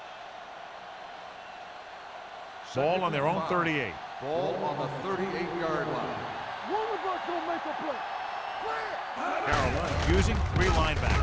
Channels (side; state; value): both; identical; correlation 1.00